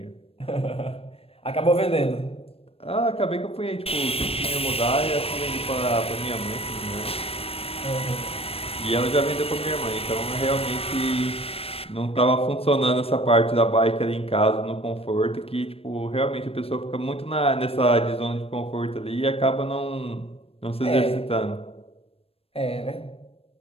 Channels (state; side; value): late; right; 0.28 ms